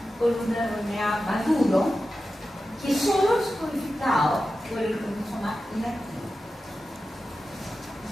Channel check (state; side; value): normal; both; correlation 0.93